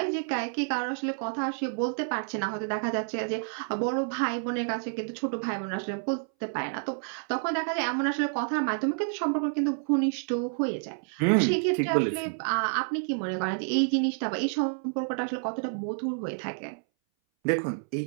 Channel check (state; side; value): silent; left; 59 dB below the other